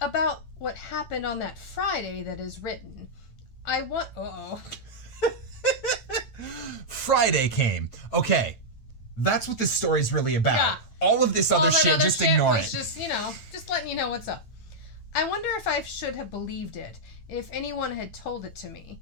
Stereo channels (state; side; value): late; right; 9.0 ms